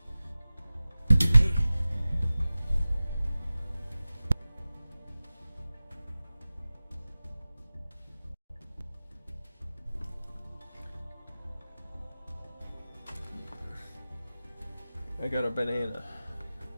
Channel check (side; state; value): both; inverted; correlation -0.96